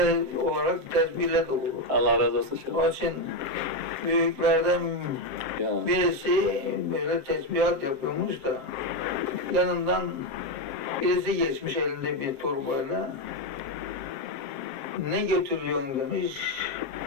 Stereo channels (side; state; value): left; late; 7.4 ms